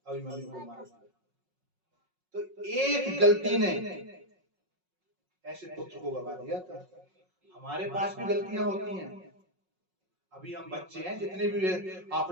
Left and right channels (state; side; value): late; left; 5.5 ms